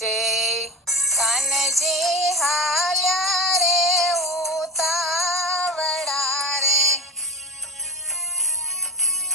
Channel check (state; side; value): normal; both; correlation 0.27